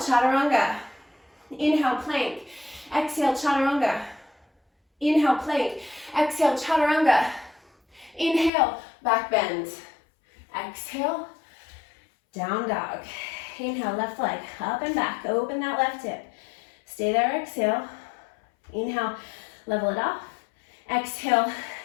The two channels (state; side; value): drops out; right; at 8.5 s